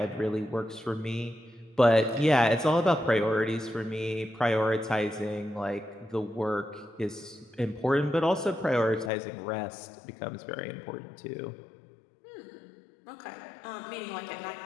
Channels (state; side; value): drops out; right; at 9.1 s